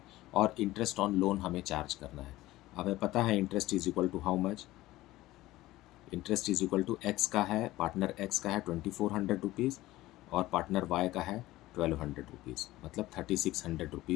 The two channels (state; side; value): quieter; right; 17.1 dB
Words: और इंटरेस्ट ऑन लोन हमें चार्ज करना है। हमें पता है interest is equal to how much? Interest is equal to x का है, पार्टनर एक्स का है 2400 रुपीज़ और पार्टनर वाई का है 1200 रुपीज़, मतलब 3600